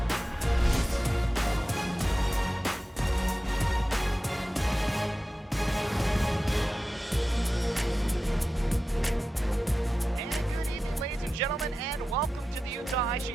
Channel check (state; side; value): normal; both; correlation 0.93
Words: Gentlemen, and welcome to the Utah Ice Sheet